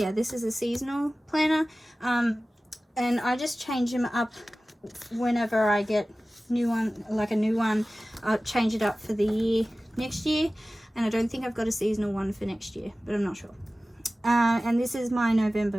this is a seasonal planner. And I just change them up whenever I get a new one. I'll change it up for the year next year. And I don't think I've got a seasonal one for next year, but I'm not sure. And this is my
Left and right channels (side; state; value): both; normal; correlation 0.97